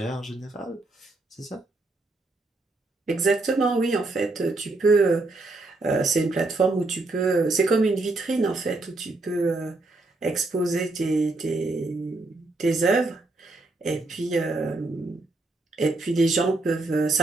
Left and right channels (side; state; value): left; quieter; 3.1 dB